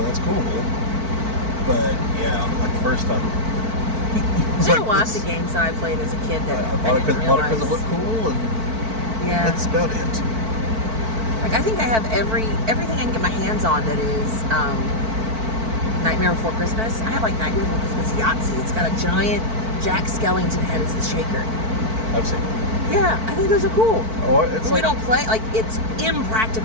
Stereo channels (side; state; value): left; late; 4.5 ms